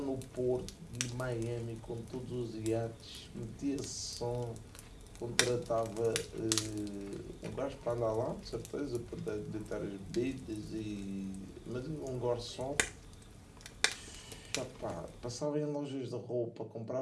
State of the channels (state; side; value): identical; both; correlation 1.00